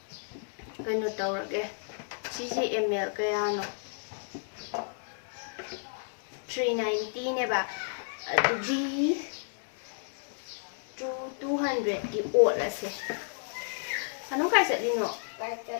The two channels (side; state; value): right; silent; digital silence